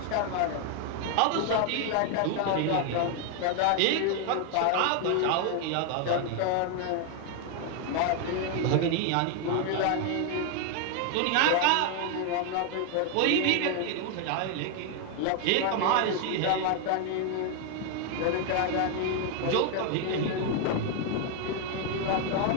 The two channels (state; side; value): different; both; correlation 0.00